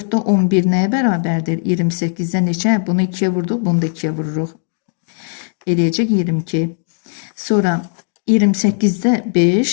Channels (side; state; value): right; silent; 67 dB below the other